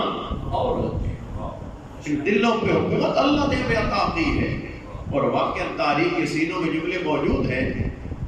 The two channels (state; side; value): identical; both; correlation 1.00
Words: اور ہوتے ہیں۔ دلوں پہ حکومت اللہ نے ہمیں عطا کی ہے، اور واقعا تاریخ کے سینوں میں جملے موجود ہیں